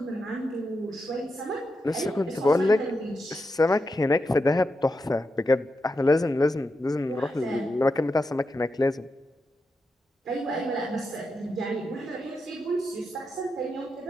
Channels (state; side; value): normal; both; correlation 0.87